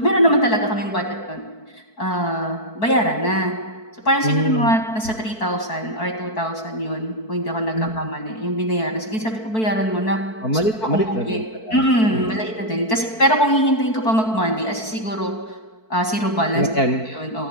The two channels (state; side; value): late; right; 4.5 ms